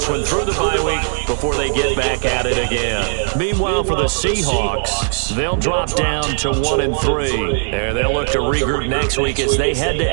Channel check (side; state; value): left; silent; digital silence